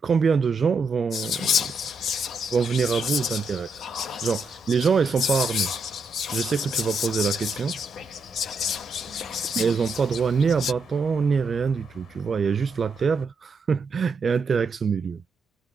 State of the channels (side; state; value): left; quieter; 3.1 dB